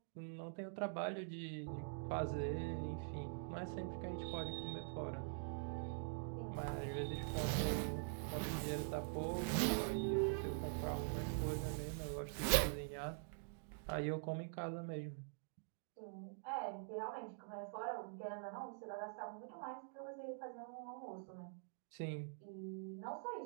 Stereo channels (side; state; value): left; silent; digital silence